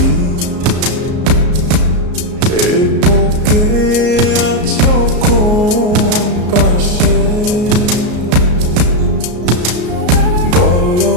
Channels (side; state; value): left; late; 33 ms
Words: এ বুকে আছো কোন পাশে বলো